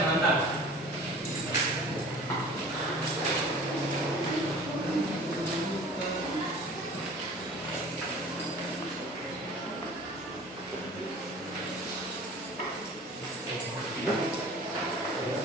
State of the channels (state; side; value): normal; both; correlation 0.44